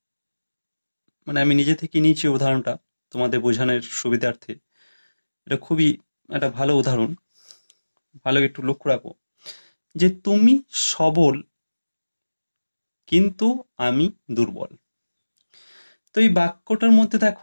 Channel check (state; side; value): inverted; both; correlation -1.00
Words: মানে আমি নিজে থেকে নিয়েছি উদাহরণটা তোমাদের বোঝানোর সুবিধার্থে। এটা খুবই একটা ভালো উদাহরণ, ভালো একটু লক্ষ্য রাখো যে তুমি সবল কিন্তু আমি দুর্বল। তো এই বাক্যটার মধ্যে